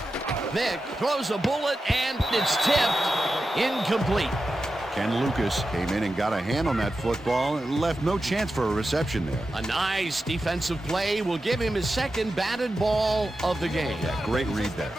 Vick throws a bullet, and it's tipped. Incomplete. Ken Lucas came in and got a hand on that football and left no chance for a reception there. A nice defensive play will give him his second batted ball of the game. Yeah, great read there.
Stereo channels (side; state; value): both; normal; correlation 0.91